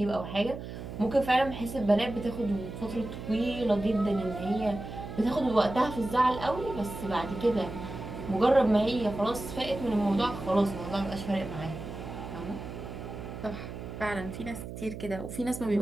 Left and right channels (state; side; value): noise; right; hum, 9 dB below the sound